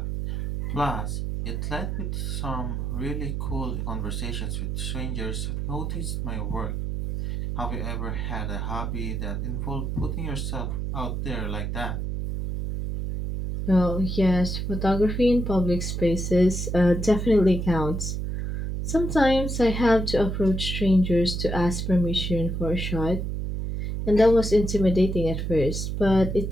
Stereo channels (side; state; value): right; noise; hum, 2 dB below the sound